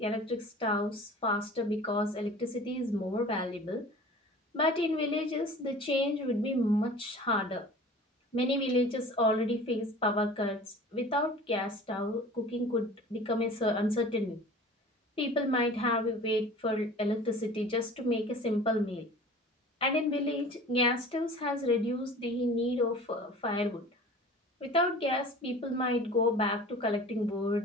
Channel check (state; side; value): normal; both; correlation 0.42